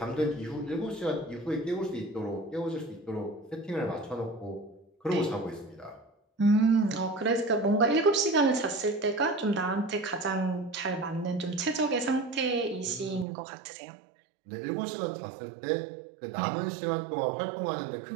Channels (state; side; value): drops out; left; at 13.2 s